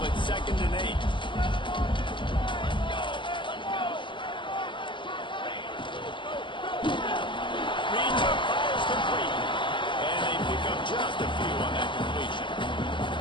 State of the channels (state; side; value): late; right; 0.24 ms